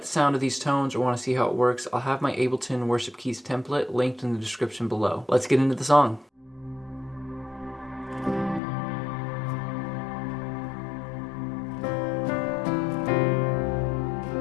the sound of these tones or want to see how it works, I'll have my Ableton Worship Keys template linked in the description below. Let's get into the song.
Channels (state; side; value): drops out; right; at 8.6 s